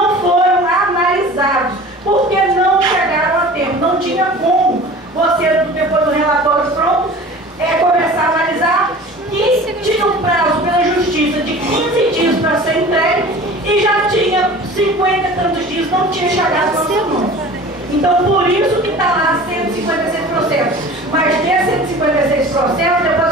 foram analisados, porque não chegaram a tempo. Não tinha como você, depois do relatório pronto, começar a analisar, e tinha um prazo pela justiça de 15 dias para ser entregue, e já tinha 50 e tantos dias, não tinha chegado ao seu nome. Então, por isso que está lá 156 processos. Mas desses 156 processos,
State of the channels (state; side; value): normal; both; correlation 0.41